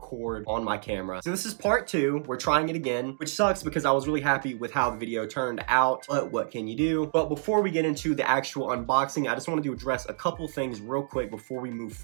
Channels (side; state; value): left; silent; digital silence